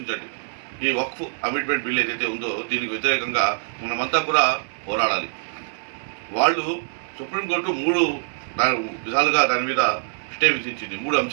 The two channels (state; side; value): silent; left; 63 dB below the other